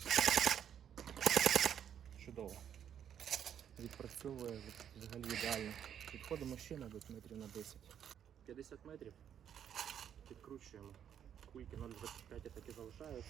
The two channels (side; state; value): left; quieter; 9.1 dB